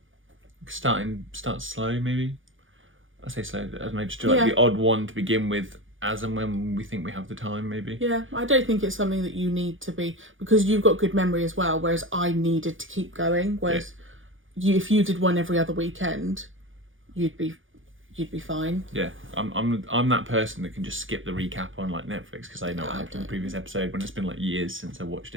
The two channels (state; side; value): late; left; 0.57 ms